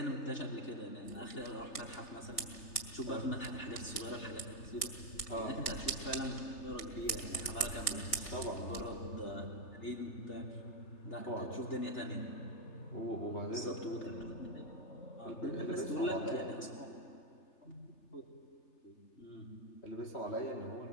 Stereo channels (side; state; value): right; late; 3.3 ms